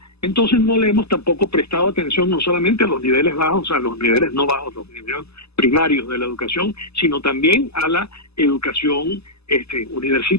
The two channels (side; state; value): right; late; 0.79 ms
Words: Entonces no le hemos tampoco prestado atención no solamente a los niveles bajos, a los niveles no bajos, los niveles primarios de la educación, sino también a la educación